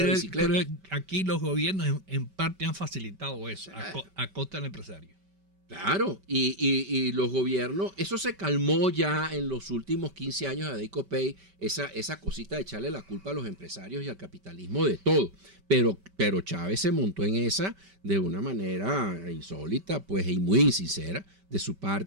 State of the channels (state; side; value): late; left; 5.2 ms